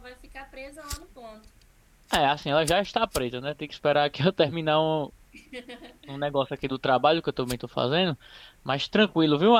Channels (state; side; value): identical; both; correlation 1.00